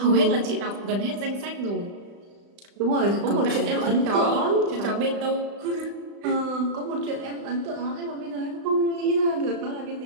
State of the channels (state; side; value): late; left; 35 ms